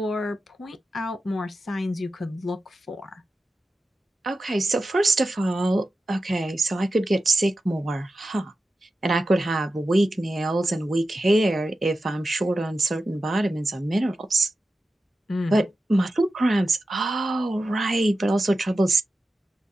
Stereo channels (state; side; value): normal; both; correlation 0.92